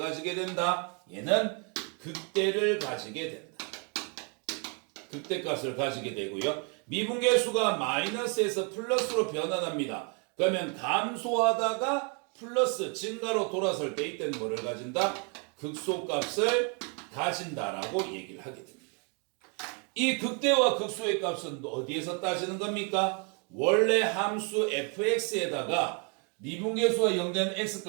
된다? 얘는 극대를 가지게 된다. 극대값을 가지게 되고요. 미분계수가 마이너스에서 플러스로 변환합니다. 그러면 감소하다가 플러스 증가로 돌아설 때 이때는 뭐를 가진다? 극소값을 가진다라고 얘기를 하게 됩니다. 이 극대와 극소의 값은 어디에서 따지는 겁니까? 원래 함수 fx에다가 미분계수가 0 된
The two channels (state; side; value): quieter; left; 36.6 dB